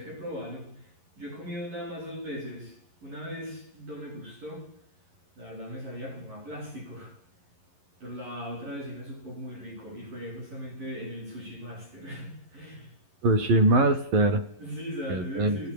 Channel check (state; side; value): late; left; 11 ms